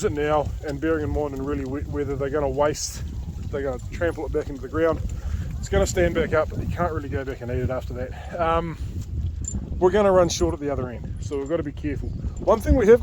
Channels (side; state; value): both; identical; correlation 1.00